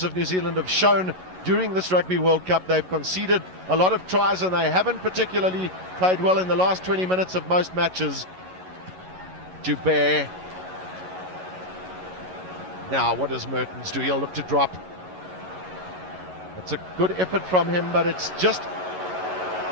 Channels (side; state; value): left; late; 11 ms